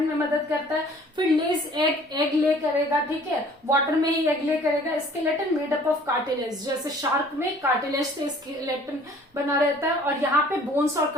में मदद करता है। फिर लेज, एग ले करेगा, ठीक है, वाटर में ही एग ले करेगा। Skeleton made up of cartilage, जैसे शार्क में कार्टिलेज से स्केलेटन बना रहता है और यहाँ पे बोन्स और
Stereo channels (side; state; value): both; normal; correlation 0.53